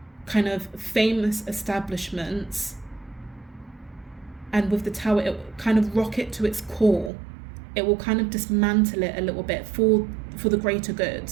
kind of famous establishments, and with the tower, it will kind of rock it to its core. It will kind of dismantle it a little bit for the greater good.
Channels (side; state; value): left; drops out; at 7.1 s